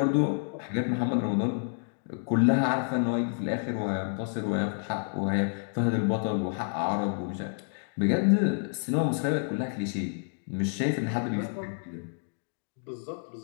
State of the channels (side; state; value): right; silent; digital silence